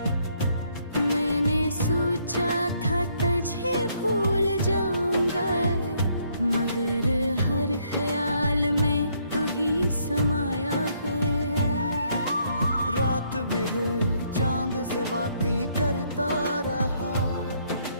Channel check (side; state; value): both; inverted; correlation -0.70